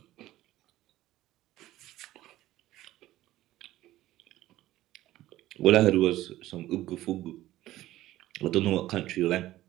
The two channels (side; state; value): left; quieter; 15.3 dB